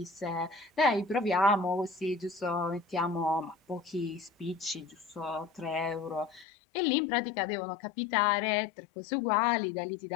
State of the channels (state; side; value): drops out; right; at 6.5 s